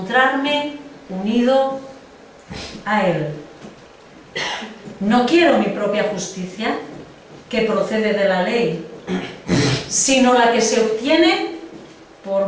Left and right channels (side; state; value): both; identical; correlation 1.00